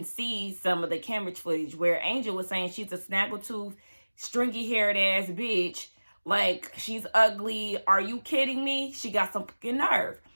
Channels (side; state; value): both; inverted; correlation -1.00